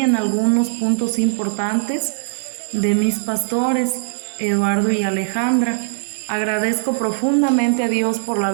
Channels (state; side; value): silent; left; 64 dB below the other